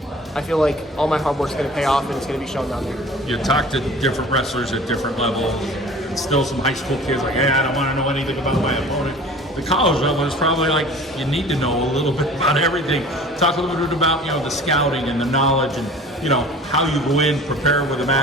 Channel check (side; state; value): both; normal; correlation 0.44